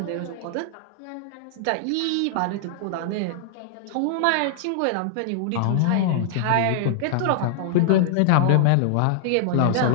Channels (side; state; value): both; different; correlation -0.01